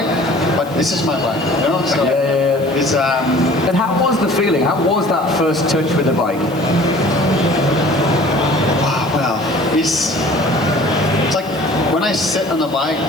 but this is my bike, you know. So it's And how was the feeling? How was that first touch with the bike? Wow, well, it's like when I sit on the bike,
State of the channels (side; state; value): right; noise; hiss, 21 dB below the sound